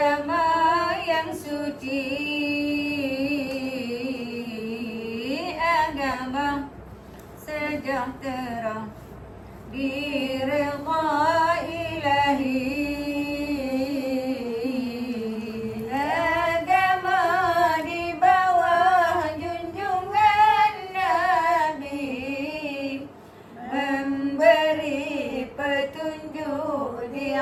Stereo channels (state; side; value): identical; both; correlation 1.00